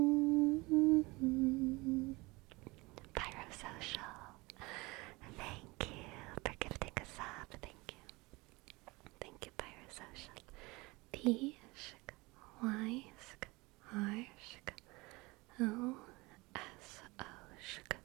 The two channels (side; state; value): left; quieter; 23.6 dB